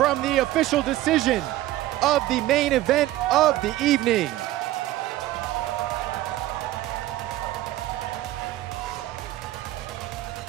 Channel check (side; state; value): left; quieter; 15.5 dB